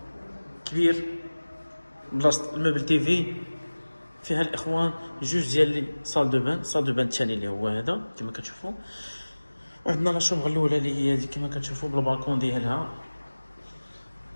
كبير بلاصه الموبل تيفي فيها الاخوان جوج ديال لي صال دو بان الثاني اللي هو هذا كما كتشوفوا. وعندنا لا شومبر الاولى اللي هي هذه كما كتشوفوا بالبالكون ديالها.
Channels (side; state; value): both; inverted; correlation -1.00